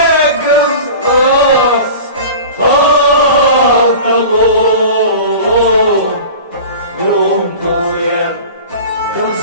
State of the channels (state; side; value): inverted; both; correlation -0.37